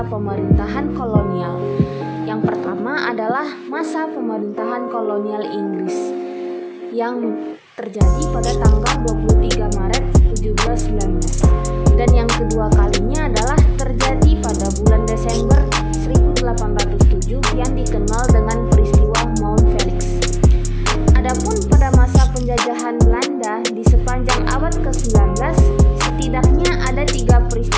pemerintahan kolonial. Yang pertama adalah masa pemerintahan kolonial Inggris yang terjadi pada tanggal 23 Maret 1719, dan yang kedua kalinya adalah terjadi pada bulan Desember 1807 yang dikenal dengan peristiwa Mount Felix. Adapun pada masa penjajahan Belanda di sepanjang abad ke-19, setidaknya ada 3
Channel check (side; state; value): both; identical; correlation 1.00